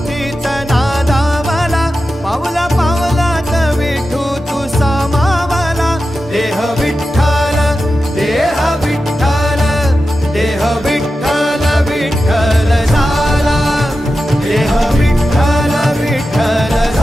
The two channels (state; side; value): normal; both; correlation 0.92